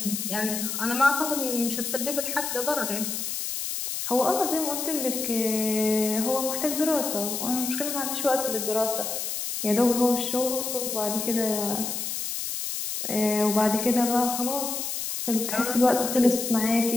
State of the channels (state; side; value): noise; left; hiss, 3 dB below the sound